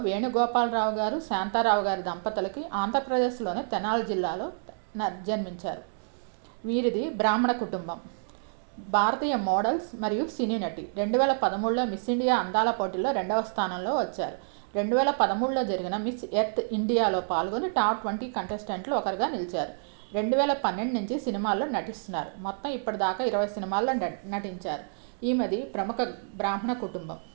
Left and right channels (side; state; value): left; silent; digital silence